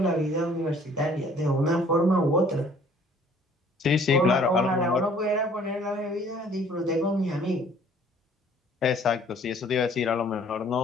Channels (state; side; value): normal; both; correlation 0.56